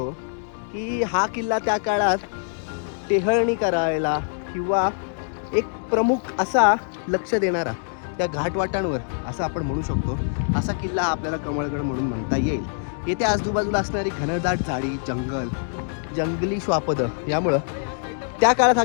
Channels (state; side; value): silent; right; digital silence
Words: की हा किल्ला त्या काळात टेहळणी करायला किंवा एक प्रमुख असा लक्ष देणारा त्या घाटवाटांवर असं आपण म्हणू शकतो असा किल्ला आपल्याला कमळगड म्हणून म्हणता येईल. येथे आजूबाजूला असणारी घनदाट झाडी, जंगली श्वापदं यामुळं त्या काळात हा